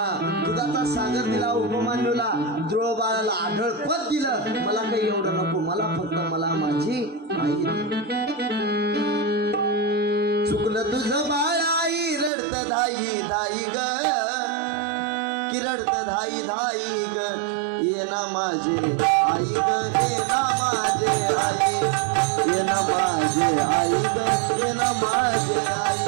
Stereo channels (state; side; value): drops out; left; at 12.3 s